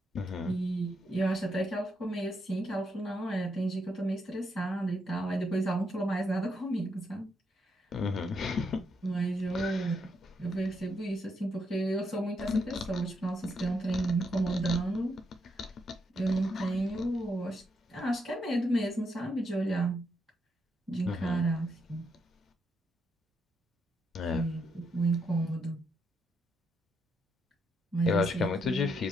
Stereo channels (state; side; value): normal; both; correlation 0.79